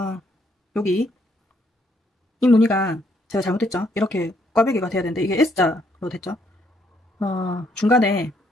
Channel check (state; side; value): normal; both; correlation 0.71